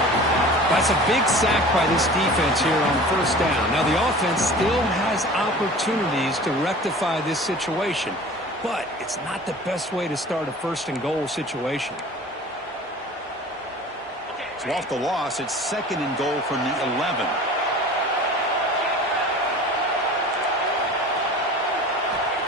That's a big sack by this defense here on first down. Now, the offense still has opportunities to rectify this situation, but it's not the best way to start a first and goal situation. So off the loss, it's second and goal from the 11.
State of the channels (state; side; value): normal; both; correlation 0.41